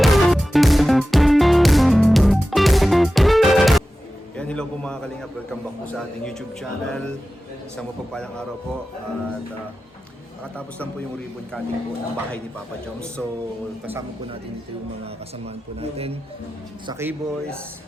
Yan, hello po mga kalingap. Welcome back po sa ating YouTube channel. Isang mapagpalang araw po. At nakatapos lang po yung ribbon cutting po ng bahay ni Papa Joms. So, kasama po natin dito yung mga kasamaan po natin sa K-Boys.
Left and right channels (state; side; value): normal; both; correlation 0.94